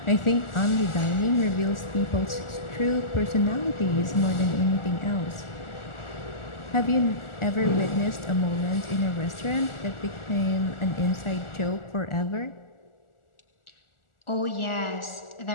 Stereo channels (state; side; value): late; right; 1.4 ms